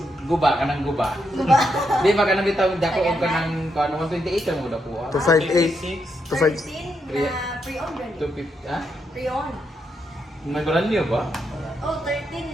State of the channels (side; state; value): both; normal; correlation 0.80